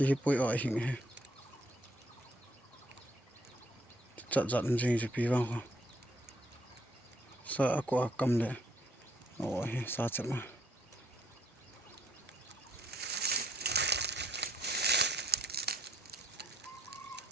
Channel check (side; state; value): both; normal; correlation 0.68